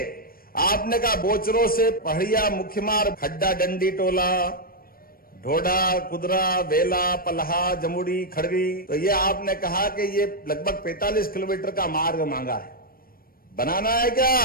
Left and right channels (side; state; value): right; late; 0.43 ms